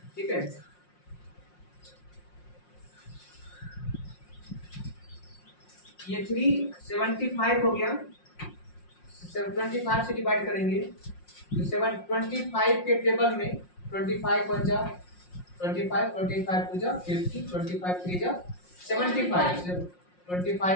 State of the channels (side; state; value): right; late; 5.6 ms